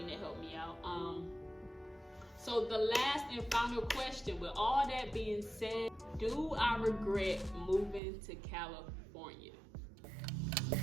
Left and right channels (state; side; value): drops out; left; at 8.0 s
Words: that helped me out. So the last and final question, with all that being said, do I regret moving to California?